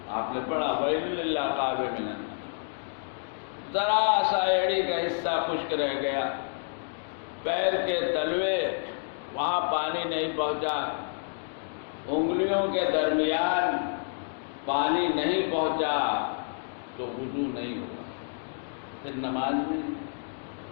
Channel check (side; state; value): right; silent; digital silence